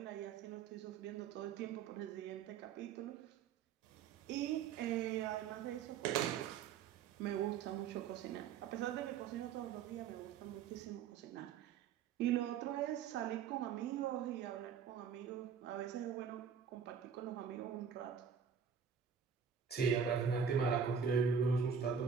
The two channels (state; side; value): quieter; left; 7.0 dB